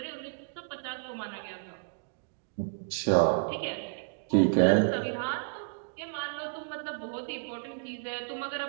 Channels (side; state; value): left; silent; digital silence